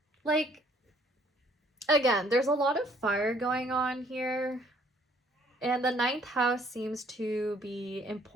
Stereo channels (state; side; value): normal; both; correlation 0.62